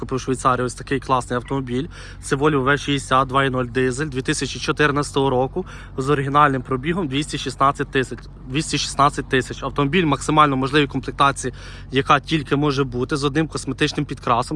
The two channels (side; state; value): both; identical; correlation 1.00